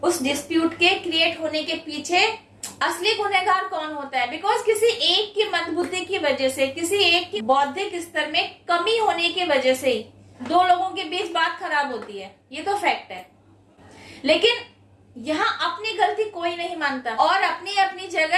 उस डिस्प्यूट के क्रिएट होने के पीछे असली गुनहगार कौन होता है? बिकॉज किसी एक की मंदबुद्धि की वजह से, किसी एक की बौद्धिक स्तर में कमी होने की वजह से ही दो लोगों के बीच बात खराब होती है, ये तो फैक्ट है। लेकिन यहाँ अपनी गलती कोई नहीं मानता और अपनी अपनी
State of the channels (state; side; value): identical; both; correlation 1.00